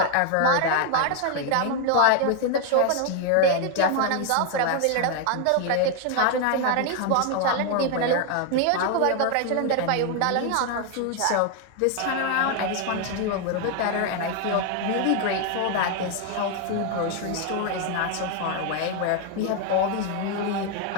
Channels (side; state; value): both; different; correlation 0.00